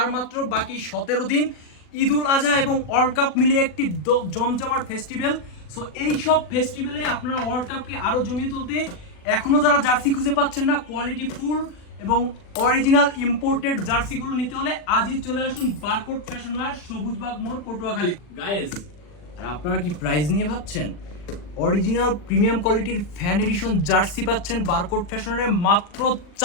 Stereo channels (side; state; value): right; late; 40 ms